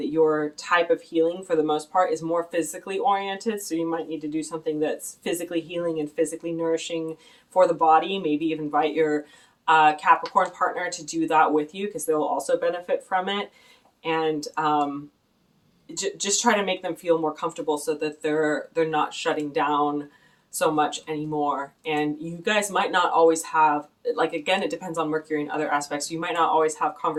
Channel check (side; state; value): both; identical; correlation 1.00